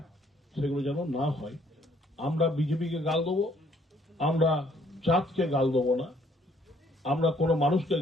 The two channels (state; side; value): normal; both; correlation 0.64